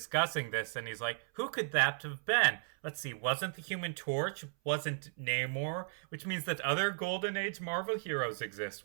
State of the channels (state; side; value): silent; left; 54 dB below the other